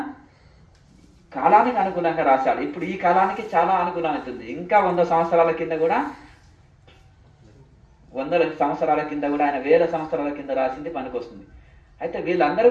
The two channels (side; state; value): both; identical; correlation 1.00